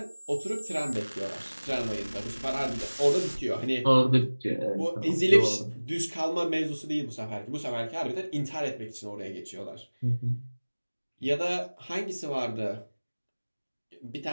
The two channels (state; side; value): inverted; both; correlation -1.00